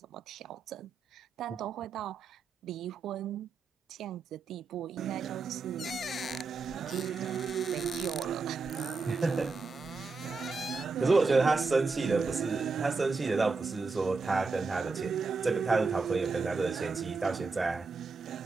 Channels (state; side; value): quieter; left; 4.2 dB